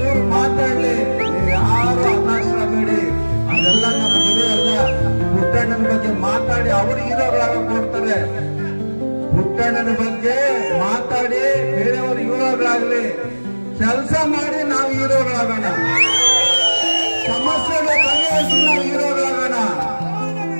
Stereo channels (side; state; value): both; inverted; correlation -1.00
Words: ಮಾತಾಡ್ಲಿ, ನೀವು ಯಾರು ಹತಾಶರಾಗಬೇಡಿ. ಅದೆಲ್ಲ ನಮ್ಮ ಗುರಿ ಅಲ್ಲ. ಪುಟ್ಟಣ್ಣನ ಬಗ್ಗೆ ಮಾತಾಡಿ ಅವರು ಹೀರೋಗಳಾಗ ಕೊಡ್ತಾರೆ. ಪುಟ್ಟಣ್ಣನ ಬಗ್ಗೆ ಮಾತಾಡಿ ಬೇರೆಯವರು ಹೀರೋಗಳಾಗ್ಲಿ, ಕೆಲಸ ಮಾಡಿ ನಾವು ಹೀರೋಗಳಾಗೋಣ. ಸಮಸ್ಯೆಗಳು ಬಗೆಹರಿಸಿ ನಾವು ಹೀರೋಗಳಾಗೋಣ.